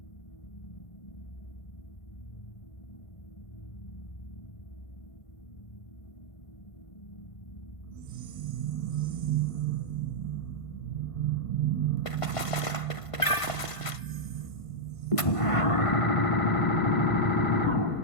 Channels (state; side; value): late; right; 1.5 ms